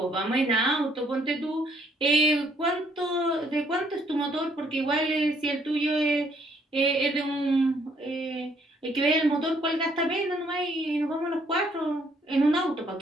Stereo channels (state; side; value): normal; both; correlation 0.67